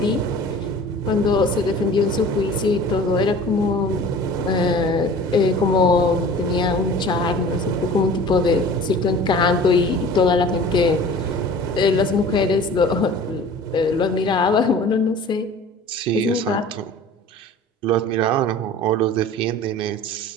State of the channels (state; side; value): normal; both; correlation 0.43